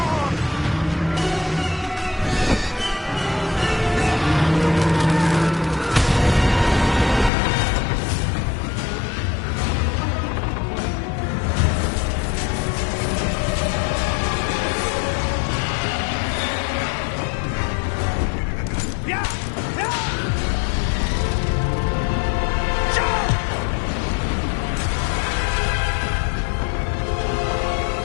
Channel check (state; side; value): drops out; right; at 7.3 s